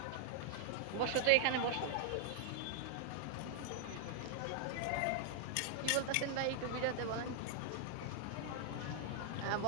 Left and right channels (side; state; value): both; different; correlation -0.01